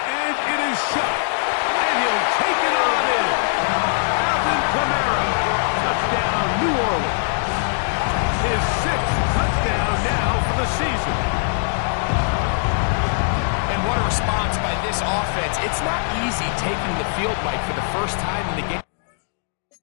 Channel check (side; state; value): right; silent; digital silence